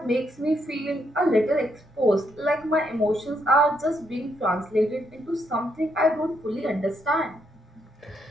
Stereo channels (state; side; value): normal; both; correlation 0.76